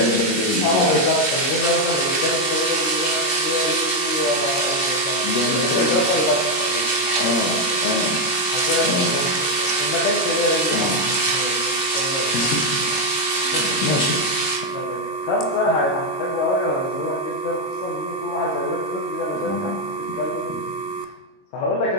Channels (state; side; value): late; right; 22 ms